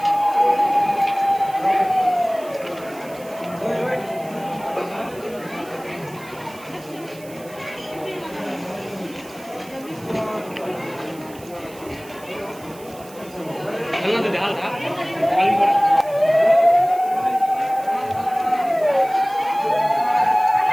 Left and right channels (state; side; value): noise; right; hiss, 21 dB below the sound